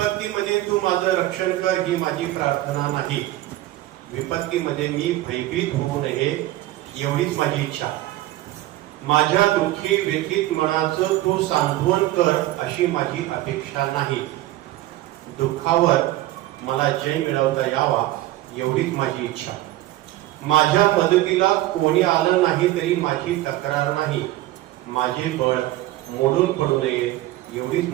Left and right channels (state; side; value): quieter; left; 16.1 dB